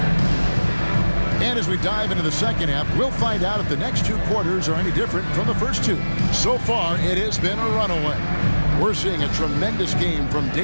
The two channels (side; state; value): both; inverted; correlation -1.00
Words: And as we dive into the second half, we'll find out if the next two quarters are any different from the first two. So far, it has been a runaway. We're seeing a tremendous game from